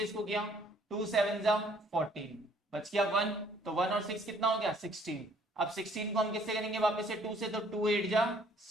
इसको किया, 2 7 जा 14, बच गया 1, तो 1 और 6 कितना हो गया 16। अब 16 को हम किससे करेंगे वापस से 2 से, तो 2 8 जा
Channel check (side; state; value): both; normal; correlation 0.61